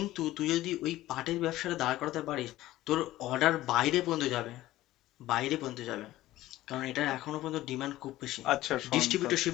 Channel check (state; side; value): quieter; right; 15.8 dB